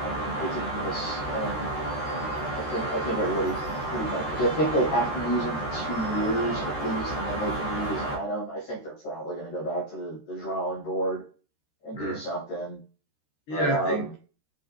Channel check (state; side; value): late; right; 13 ms